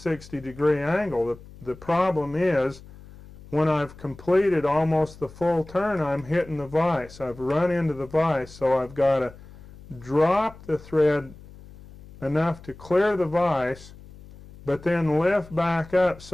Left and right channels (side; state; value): left; noise; hum, 19 dB below the sound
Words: angle. The problem is, when I've completed almost the full turn, I'm hitting the vise. I've run into the vise, so I've got to drop the thread enough to clear the vise, but then lift back up